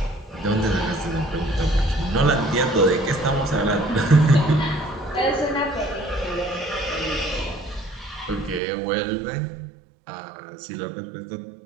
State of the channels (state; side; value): drops out; left; at 8.6 s